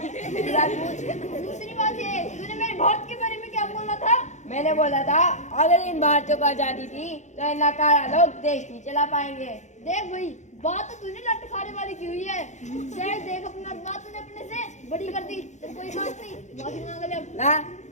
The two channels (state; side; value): late; right; 0.34 ms